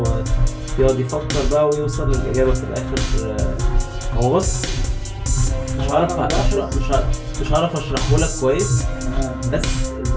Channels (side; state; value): both; identical; correlation 1.00